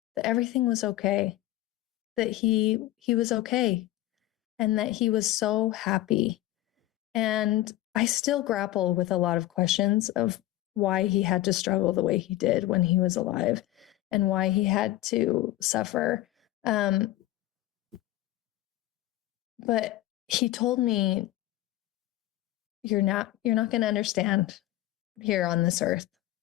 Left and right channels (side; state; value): right; quieter; 15.8 dB